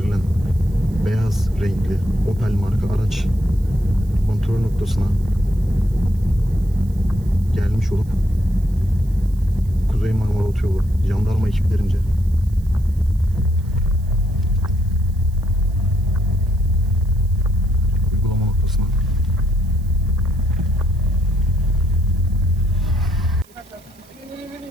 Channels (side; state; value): right; noise; hiss, 28 dB below the sound